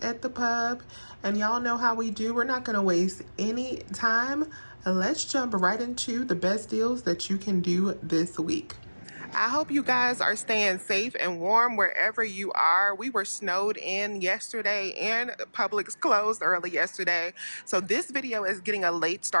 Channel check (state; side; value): inverted; both; correlation -1.00